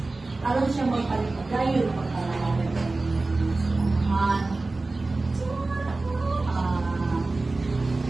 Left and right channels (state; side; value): quieter; left; 3.3 dB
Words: Alam siya magpalimagayon ng pagkalalaman ng samahan.